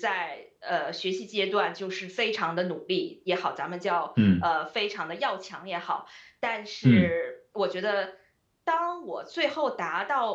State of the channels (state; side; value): identical; both; correlation 1.00